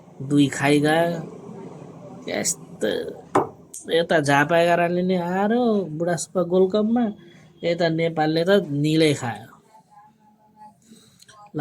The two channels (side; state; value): both; identical; correlation 1.00